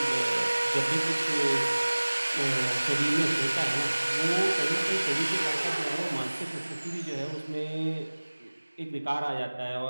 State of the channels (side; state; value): both; inverted; correlation -1.00